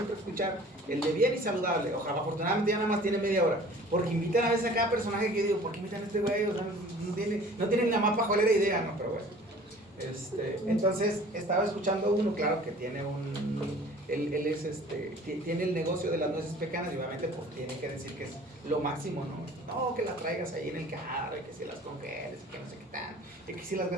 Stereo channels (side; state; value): both; normal; correlation 0.48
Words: escuchar el de bien y saludable. Ojalá, afortunadamente ya nada más tiene media hora, porque invitan a veces a cada personaje que digo, ¿por qué invitan a este güey? O sea, no tienen la más pajolera idea, ¿no? Pero bueno. Entonces estaba escuchando uno, claro, que tiene tiene el negocio de las nueces pecanas y obviamente pues tiene que decir que es lo máximo, ¿no? No, que las traigas ahí en el carro, y que si las congeles, y que no sé qué tal, y que si las